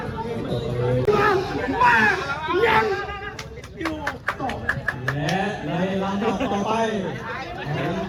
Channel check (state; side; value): identical; both; correlation 1.00